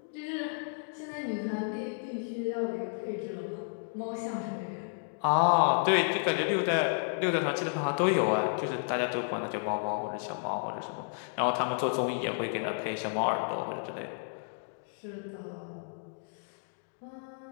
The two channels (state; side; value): silent; right; digital silence